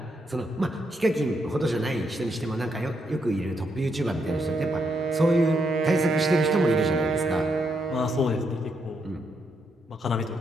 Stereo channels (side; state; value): both; normal; correlation 0.78